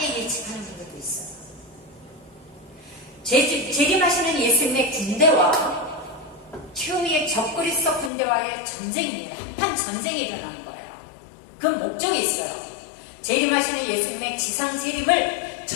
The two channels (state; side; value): drops out; right; at 8.1 s